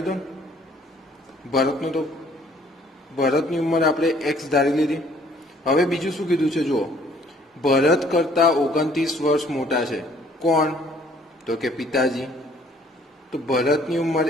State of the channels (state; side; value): normal; both; correlation 0.60